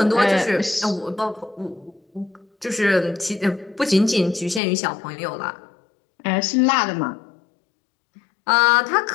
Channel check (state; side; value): drops out; right; at 4.6 s